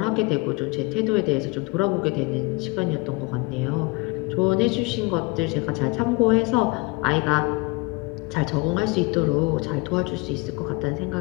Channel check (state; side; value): quieter; right; 25.7 dB